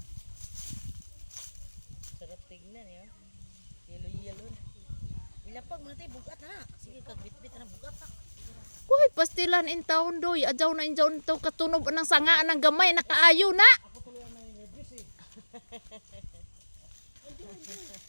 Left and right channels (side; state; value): both; inverted; correlation -1.00